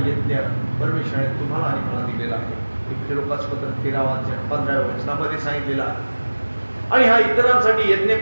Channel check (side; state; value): both; inverted; correlation -1.00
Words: यज्ञ परमेश्वराने तुम्हाला आणि मला दिलेला आहे. इब्री लोकासपत्र 13 अध्याय 15 वचनामध्ये सांगितलेला आहे. आणि हा इतरांसाठी यज्ञ